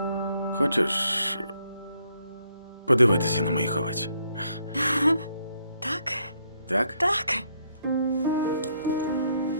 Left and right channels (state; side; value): inverted; both; correlation -0.73